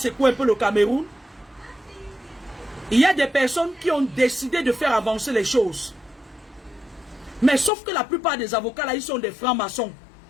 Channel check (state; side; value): drops out; right; at 7.7 s